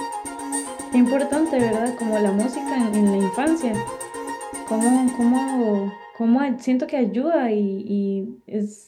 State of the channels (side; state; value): both; identical; correlation 1.00